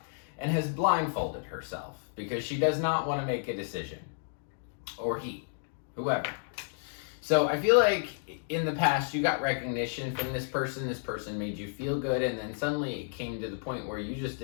and has blindfolded herself because she does not want to make a decision. Or he, whoever. So I feel like in the past you got recognition from this person made you feel good, and then suddenly it came to the point where you just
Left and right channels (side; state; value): right; silent; digital silence